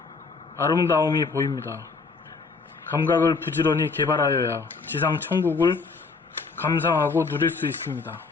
아름다움이 보입니다. 감각을 부지런히 개발하여야 지상 천국을 감상하고 누릴 수 있습니다.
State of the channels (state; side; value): quieter; right; 4.5 dB